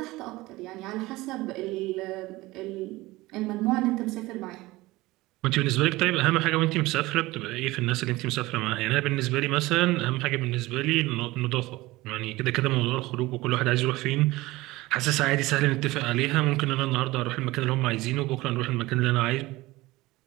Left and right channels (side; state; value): left; quieter; 19.6 dB